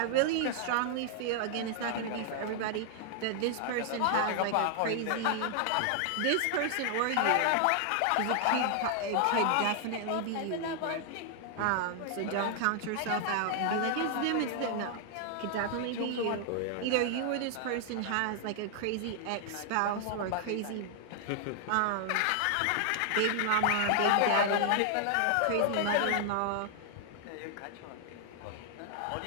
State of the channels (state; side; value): different; both; correlation 0.00